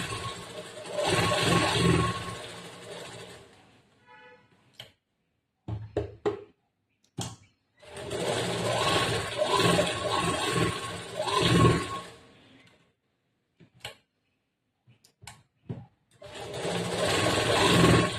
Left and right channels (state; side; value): identical; both; correlation 1.00